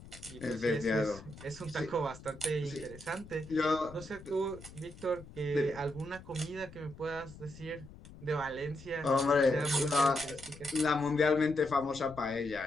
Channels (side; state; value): left; noise; rumble, 18 dB below the sound